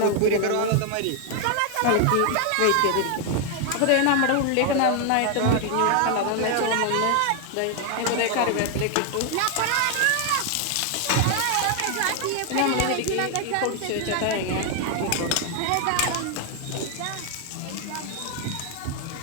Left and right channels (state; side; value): different; both; correlation 0.00